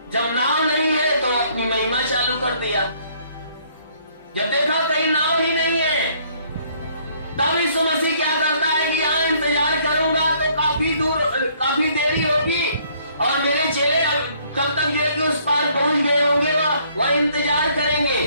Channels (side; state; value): both; inverted; correlation -0.63